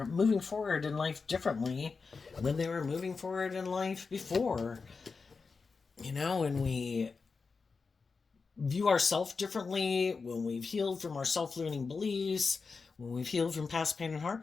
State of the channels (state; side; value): quieter; right; 4.7 dB